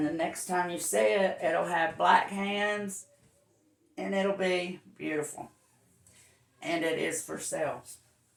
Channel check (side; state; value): both; identical; correlation 1.00